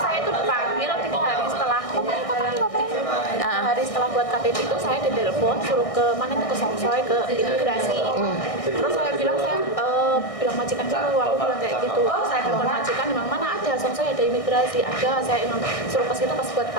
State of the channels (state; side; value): late; right; 1.6 ms